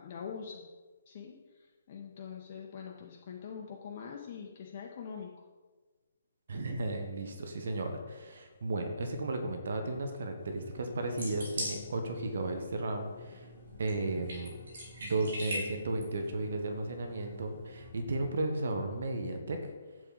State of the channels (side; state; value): both; inverted; correlation -0.75